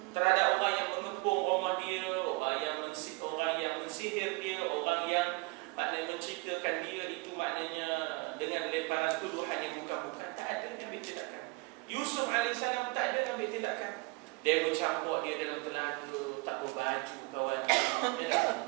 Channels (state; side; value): quieter; left; 25.4 dB